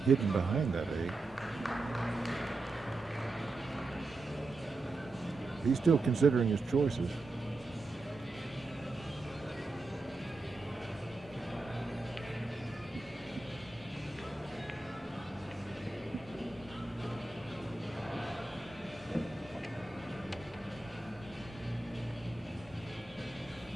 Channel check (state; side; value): quieter; left; 3.1 dB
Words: hidden behind that 8. He's still considering his choices.